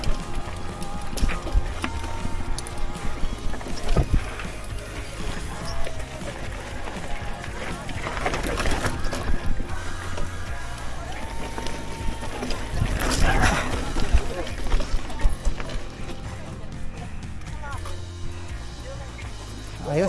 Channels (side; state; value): both; identical; correlation 1.00